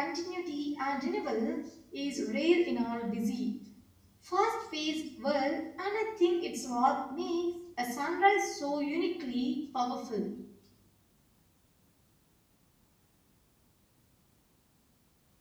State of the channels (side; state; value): both; identical; correlation 1.00